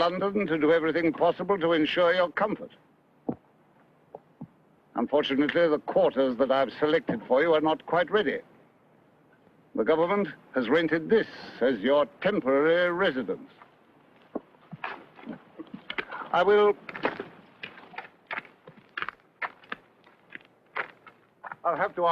to do everything possible to ensure your comfort. Unfortunately, the quarters that I've selected for you are not quite ready. The government has rented this as your temporary residence. I'll have to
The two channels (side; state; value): both; identical; correlation 1.00